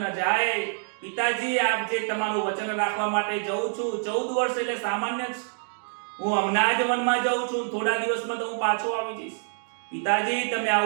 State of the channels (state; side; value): silent; left; 61 dB below the other